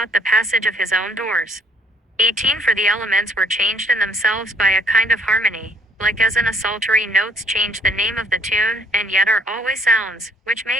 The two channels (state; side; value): normal; both; correlation 0.62